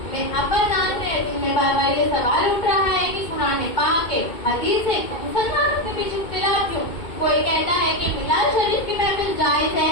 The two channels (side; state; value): right; late; 2.2 ms